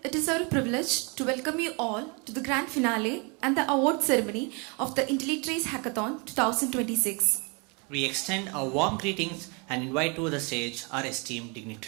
It is our privilege to welcome you all to the grand finale and the award ceremony of the IntelliTrace Hackathon 2026. We extend our warm greetings and invite to the stage our esteemed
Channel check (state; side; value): quieter; left; 32.3 dB